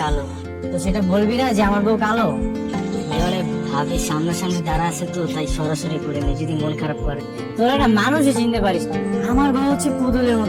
কালো। তো সেটা বলবি না যে আমার বউ কালো? এবারে ভাবি সামনাসামনি দাঁড়া আছে তো, তাই সরাসরি করে নে, যদি মন খারাপ করে। তোরা না মানুষই চিনতে পারিস না। আমার বউ হচ্ছে পুতুলের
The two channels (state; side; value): identical; both; correlation 1.00